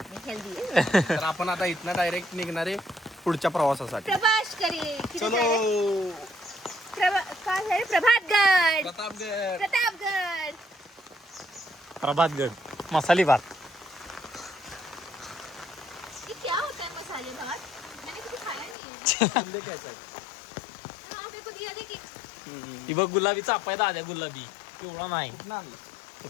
नहीं हेल्दी है. तर आपण आता इथनं डायरेक्ट निघणारे पुढच्या प्रवासासाठी. प्रभास करिए किधर चलो जा रहे हैं? कहाँ जा रहे हैं? प्रभातगढ़ प्रतापगड. प्रतापगढ़. प्रभातगड मसाली भात ये क्या होता है मसाले भात. मैंने कभी खाया नहीं है. किल्ले घ्यायचा आहे. हाँ मेरे को दिया देखिए. ती बघ गुलाबी चापाय दाद्या गुलाबी पिवळा नाही कुठनं आणलं?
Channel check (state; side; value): drops out; right; at 18.8 s